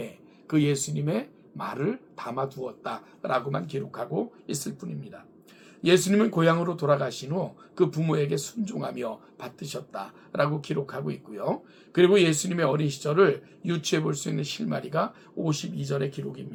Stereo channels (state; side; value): identical; both; correlation 1.00